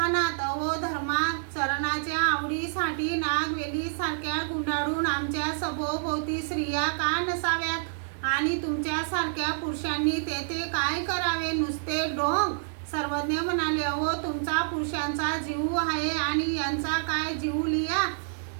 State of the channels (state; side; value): silent; left; digital silence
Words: अहो धर्माचरणाच्या आवडीसाठी नागवेली सारख्या गुंडाळून आमच्या सभोवती स्त्रिया का नसाव्यात, आणि तुमच्यासारख्या पुरुषांनी तेथे काय करावे, नुसते ढोंग। सर्वज्ञ म्हणाले, अहो तुमचा पुरुषांचा जीव आहे आणि यांचा काय जीव लिया।